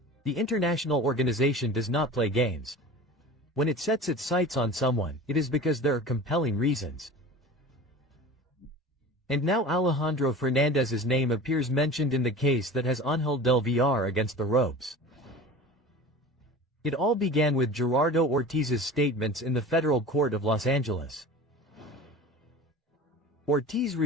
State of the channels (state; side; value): normal; both; correlation 0.37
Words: The international organization does not play games. When it sets its sights on someone, it is because there are compelling reasons. And now Alejandro Fernandez's name appears mentioned in the case that has 𝗟𝗨𝗣𝗏𝗏 against the ropes. It all began with Gerardo Ortiz's statements in the federal court of Los Angeles. Ortiz